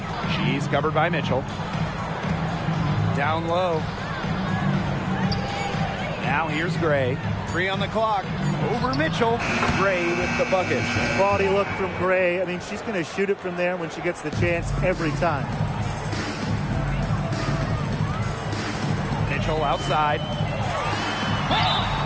She's covered by Mitchell. Down low. Now here's Gray. 3 on the clock. Over Mitchell. Gray with the bucket. Quality look from Gray. I mean, she's going to shoot it from there when she gets the chance every time. Mitchell outside.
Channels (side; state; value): both; identical; correlation 1.00